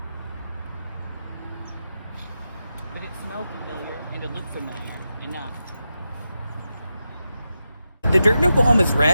But it smelled familiar and it looked familiar enough. The dirt in Oklahoma is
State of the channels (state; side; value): inverted; both; correlation -0.89